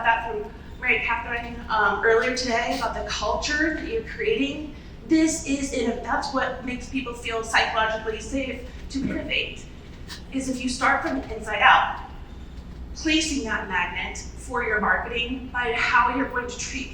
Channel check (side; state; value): both; identical; correlation 1.00